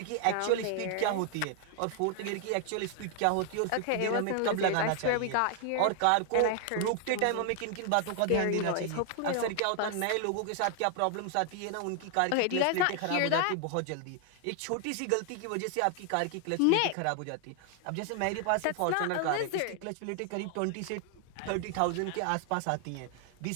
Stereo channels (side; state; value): both; different; correlation 0.00